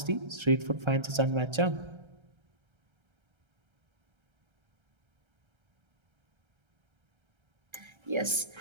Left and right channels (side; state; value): left; late; 1.3 ms